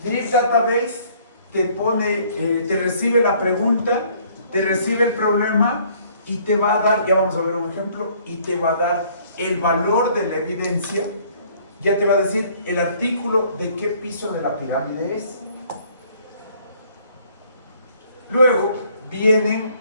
Trip Database te recibe la pregunta, te recibe el problema y te va a dar, ya vamos a ver un ejemplo, y te va a dar el valor de la evidencia. Ya te va a decir el artículo de qué piso de la pirámide es. Luego vienen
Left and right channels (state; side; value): inverted; both; correlation -0.60